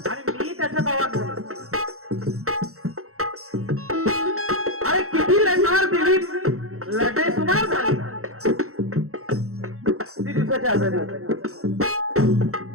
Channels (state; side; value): late; left; 0.64 ms